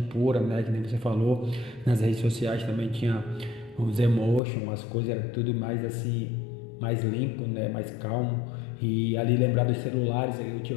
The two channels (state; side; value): drops out; right; at 4.4 s